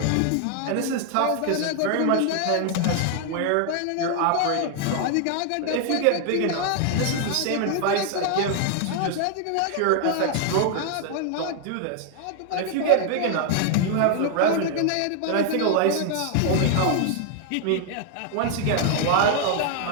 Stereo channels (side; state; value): both; different; correlation 0.00